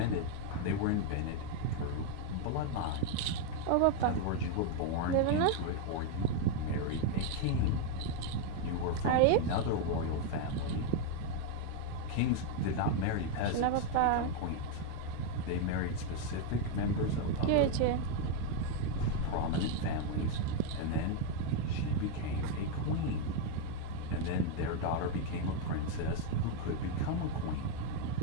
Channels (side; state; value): both; different; correlation 0.01